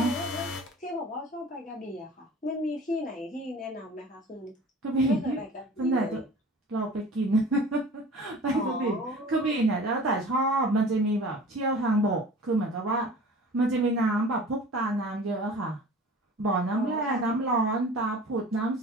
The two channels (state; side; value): normal; both; correlation 0.42